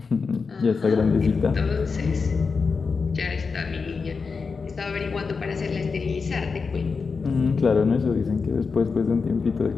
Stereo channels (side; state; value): right; quieter; 4.9 dB